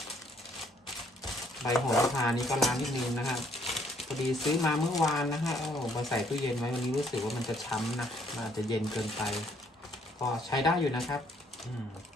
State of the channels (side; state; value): both; normal; correlation 0.66